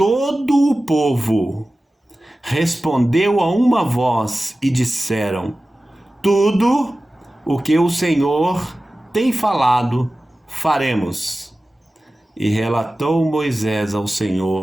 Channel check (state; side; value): normal; both; correlation 0.96